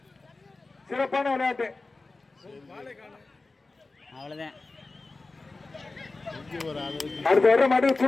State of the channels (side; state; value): right; quieter; 3.5 dB